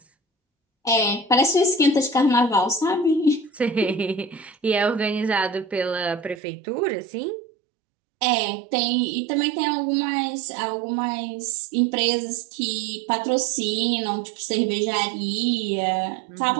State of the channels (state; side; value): drops out; left; at 6.4 s